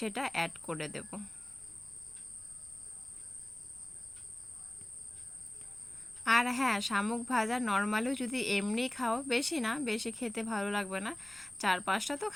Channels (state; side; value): noise; left; rumble, 26 dB below the sound